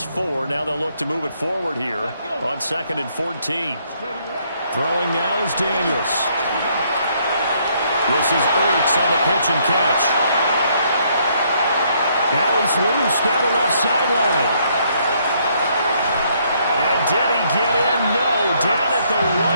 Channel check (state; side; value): inverted; both; correlation -0.69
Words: 4. Now they'll look to move it forward here on 2nd and 14. Throwing now is Daniels. This is Ertz on the pitch and catch. Now he's loose down the left sideline. And did he get in? No. Down at the